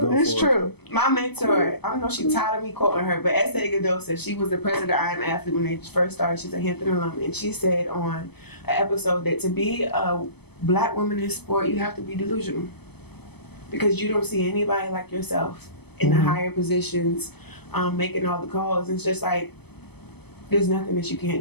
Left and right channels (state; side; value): late; right; 0.98 ms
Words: It's true. My mentor, I don't know if she's tired of me quoting her, but Sayle said she was the president of I Am Athlete when they first started. She's a Hampton alum, and she said on an episode that to be a black woman in sport, you have to be delusional. Because you don't see anybody like yourself in the higher positions, making all the calls. It's just like, there's nothing that you